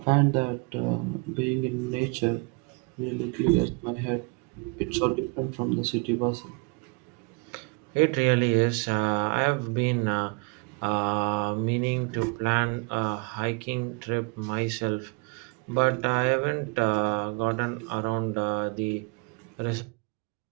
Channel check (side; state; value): left; quieter; 32.4 dB